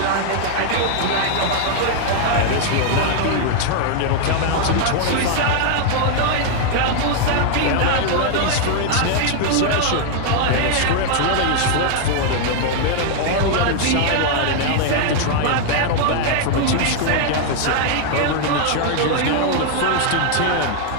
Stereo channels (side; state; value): both; different; correlation 0.00